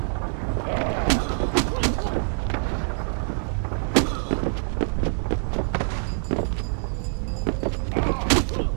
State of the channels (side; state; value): left; silent; digital silence